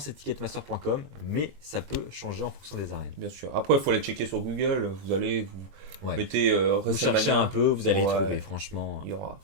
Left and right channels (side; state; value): left; late; 20 ms